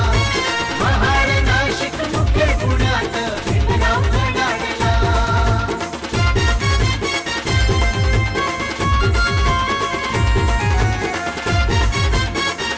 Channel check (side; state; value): both; identical; correlation 1.00